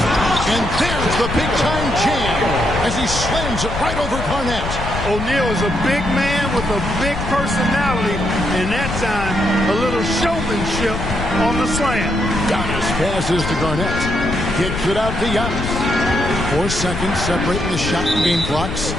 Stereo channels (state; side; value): noise; left; rumble, 5 dB below the sound